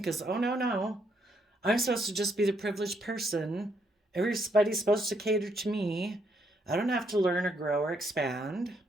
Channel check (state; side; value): normal; both; correlation 0.74